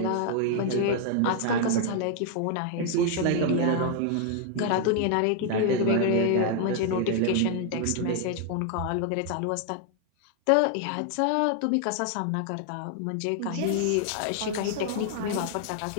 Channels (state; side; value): different; both; correlation 0.00